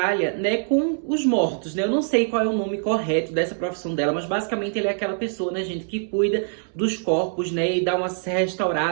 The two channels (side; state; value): left; silent; 63 dB below the other